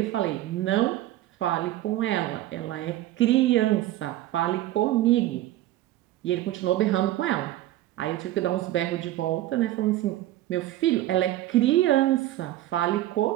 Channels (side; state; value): left; quieter; 14.8 dB